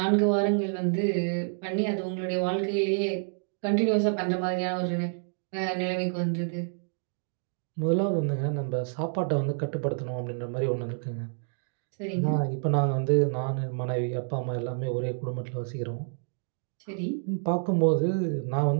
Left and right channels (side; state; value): left; silent; digital silence